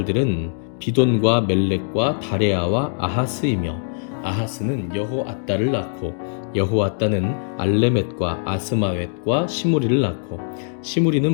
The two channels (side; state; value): right; silent; 62 dB below the other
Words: 비돈과 멜렉과 다레아와 아하스이며 아하스는 여호앗다를 낳고 여호앗다는 알레멧과 아스마웻과 시무리를 낳고